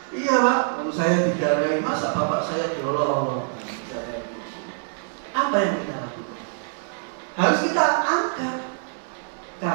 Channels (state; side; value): silent; left; 62 dB below the other